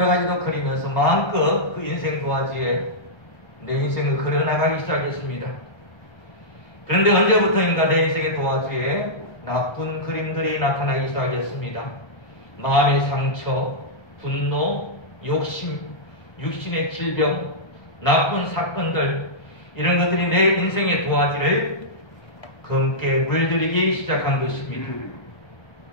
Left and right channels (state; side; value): late; right; 1.2 ms